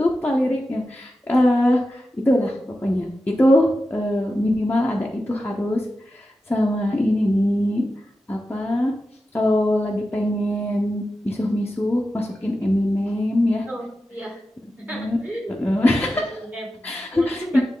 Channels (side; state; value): both; normal; correlation 0.91